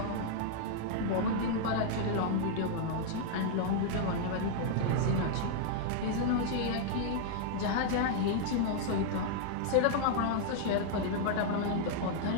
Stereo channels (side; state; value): both; different; correlation -0.01